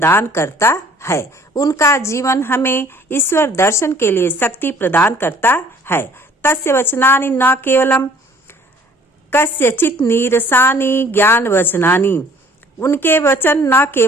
करता है। उनका जीवन हमें ईश्वर दर्शन के लिए शक्ति प्रदान करता है। तस्य वचनानि न केवलम कस्यचित् नीरसानि ज्ञान वचनानि। उनके वचन न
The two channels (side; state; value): both; normal; correlation 0.55